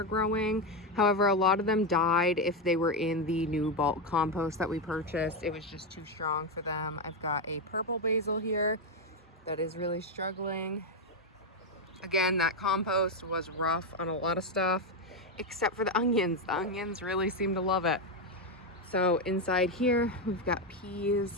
growing. However, a lot of them died if they were in the new bulk compost that we purchased. It was just too strong for them. I've got a purple basil here that is really struggling. Again, that compost was rough on a lot of stuff, except for the onions. The onions really seem to love it. So inside here, we've got peas.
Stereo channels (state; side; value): normal; both; correlation 0.07